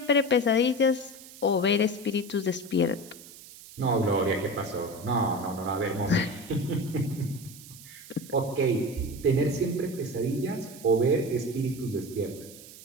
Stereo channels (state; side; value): noise; right; hiss, 18 dB below the sound